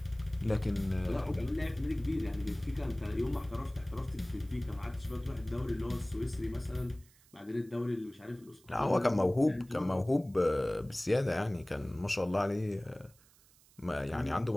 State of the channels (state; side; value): noise; right; hiss, 28 dB below the sound